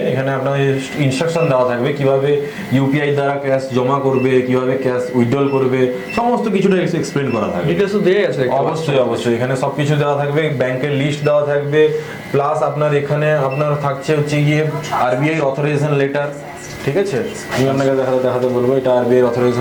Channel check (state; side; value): identical; both; correlation 1.00